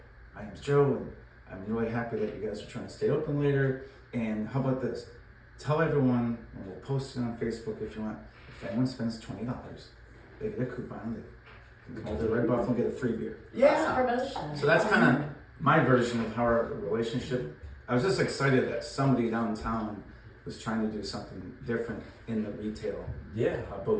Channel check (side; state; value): both; identical; correlation 1.00